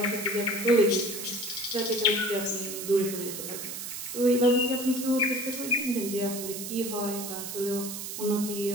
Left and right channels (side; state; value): right; noise; hiss, 7 dB below the sound